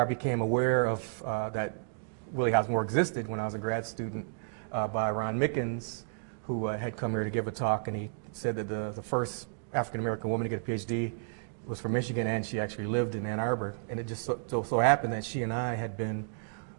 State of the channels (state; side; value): silent; left; digital silence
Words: became aware of that Willie Hobbs existed when I was a grad student by Ron Mickens, who had come here to give a talk, and he said that the first African American woman to get a PhD was from Michigan, and she actually lived in Ann Arbor. And it just so happened that she and I had been